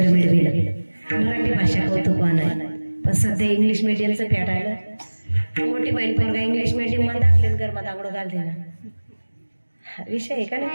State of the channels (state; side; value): inverted; both; correlation -1.00